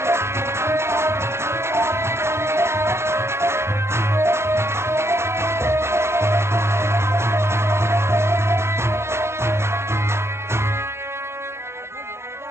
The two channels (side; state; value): left; late; 0.13 ms